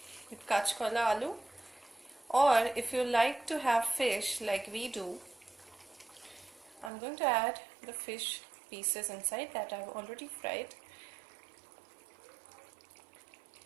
with kachkola aloo, or if you like to have fish like we do, I'm going to add the fish pieces inside that I've already fried.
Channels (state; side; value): drops out; left; at 6.9 s